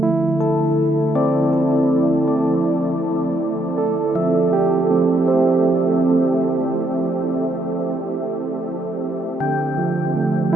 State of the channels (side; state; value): both; normal; correlation 0.75